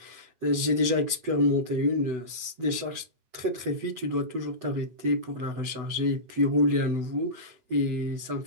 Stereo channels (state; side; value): late; left; 8.0 ms